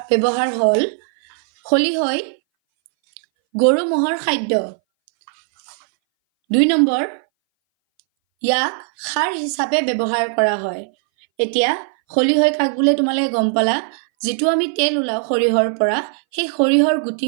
ব্যৱহাৰ হ'ল খলিহৈ গৰু ম'হৰ খাদ্য। 2 নম্বৰ ইয়াক সাৰ হিচাপে ব্যৱহাৰ কৰা হয়। এতিয়া খলিহৈ কাক বোলে তোমালোকে গম পালা। যিটো আমি তেল ওলাওঁ সৰিয়হৰ পৰা, সেই সৰিয়হৰ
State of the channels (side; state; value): left; silent; 62 dB below the other